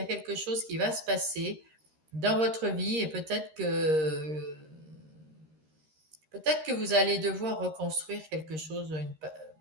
quelque chose qui va se passer dans votre vie et peut-être que vous allez devoir reconstruire quelque chose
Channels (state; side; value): late; left; 13 ms